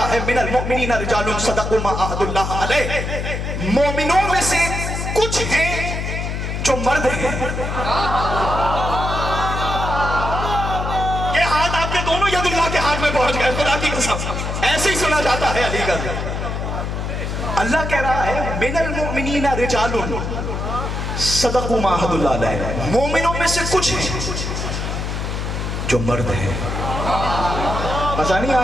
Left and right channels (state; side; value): noise; left; hum, 3 dB below the sound